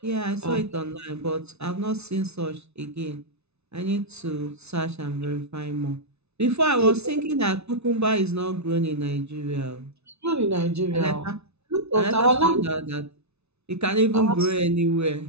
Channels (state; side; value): late; left; 0.80 ms